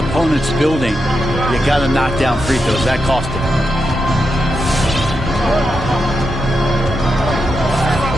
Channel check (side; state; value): both; normal; correlation 0.86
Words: building. You got to knock down free throws. That cost them.